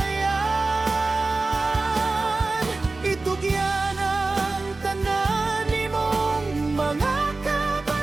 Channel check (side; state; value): left; quieter; 3.5 dB